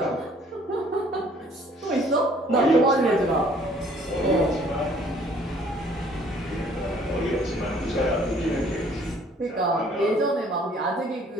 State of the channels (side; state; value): both; normal; correlation 0.58